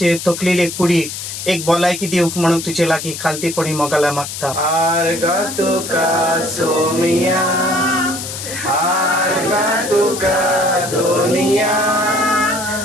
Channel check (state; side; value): noise; left; hiss, 8 dB below the sound